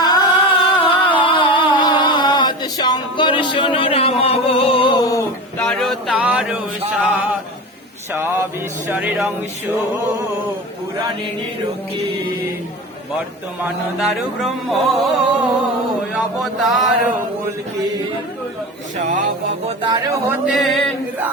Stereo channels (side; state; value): both; normal; correlation 0.29